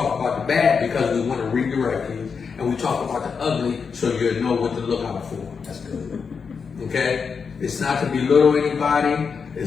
about the bad because we want to redirect you. And we talk about the ugly so you'll know what to look out for. That's good. Okay? It's not to belittle anybody.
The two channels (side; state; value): right; quieter; 5.8 dB